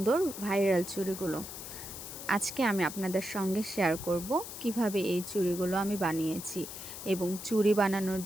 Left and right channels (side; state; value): left; noise; hiss, 10 dB below the sound